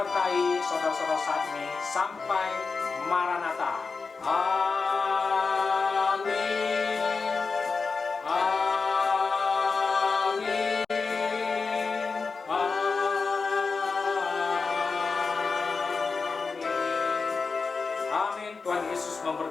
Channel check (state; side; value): quieter; right; 4.6 dB